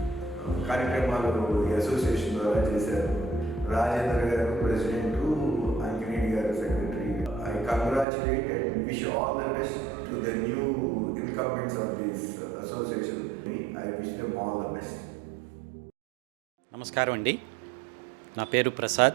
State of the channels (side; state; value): left; drops out; at 8.1 s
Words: కార్యక్రమాలు ఈ అసోసియేషన్ ద్వారా చేశారు. రాజేంద్ర గారు ప్రెసిడెంట్, అంకిరెడ్డి గారు secretary. I congratulate and wish all the best to the new incumbents of this association. I wish them all the best. నమస్కారం అండి. నా పేరు